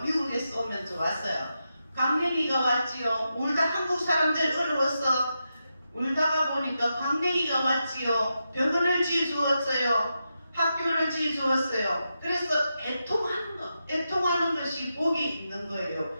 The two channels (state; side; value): inverted; both; correlation -0.87